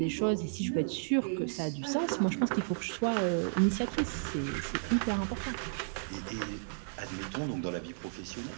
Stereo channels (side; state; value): left; silent; digital silence